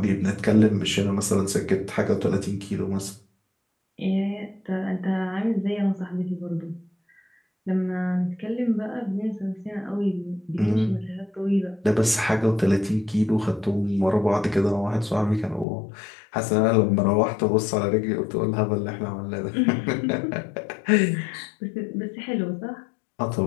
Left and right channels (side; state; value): right; drops out; at 15.7 s